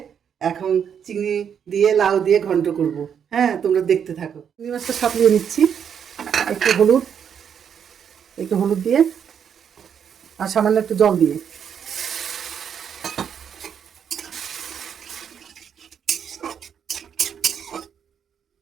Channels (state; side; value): quieter; left; 7.9 dB